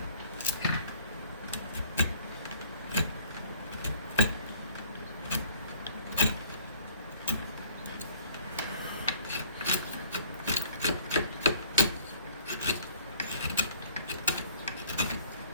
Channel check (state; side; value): inverted; both; correlation -0.54